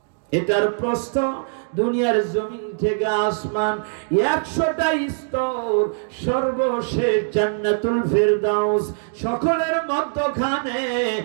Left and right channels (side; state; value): left; silent; digital silence